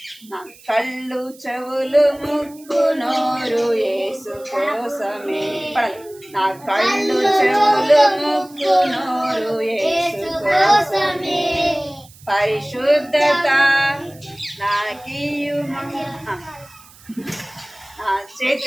నా కళ్ళు చెవులు ముక్కు నోరు యేసు కోసమే. పడాలి. నా కళ్ళు చెవులు ముక్కు నోరు యేసు కోసమే. పరిశుద్ధత నాకియుమా. నా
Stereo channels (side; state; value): right; noise; hiss, 24 dB below the sound